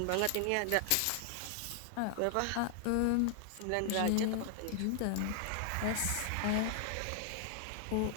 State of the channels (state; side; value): different; both; correlation 0.00